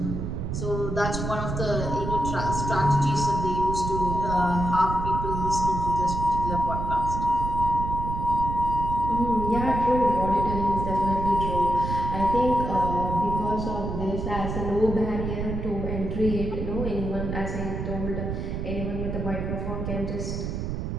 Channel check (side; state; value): right; noise; rumble, 4 dB below the sound